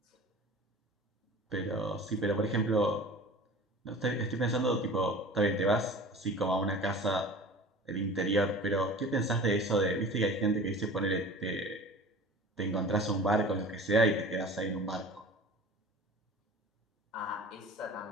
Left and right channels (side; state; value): both; normal; correlation 0.40